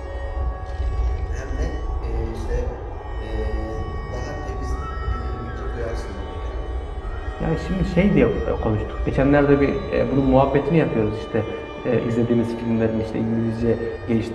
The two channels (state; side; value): identical; both; correlation 1.00